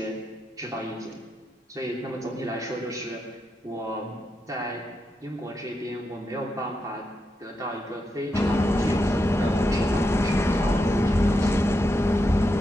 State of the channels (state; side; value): normal; both; correlation 0.85